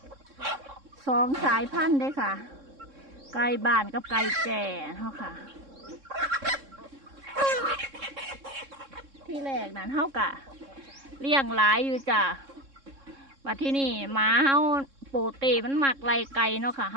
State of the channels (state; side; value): late; left; 3.6 ms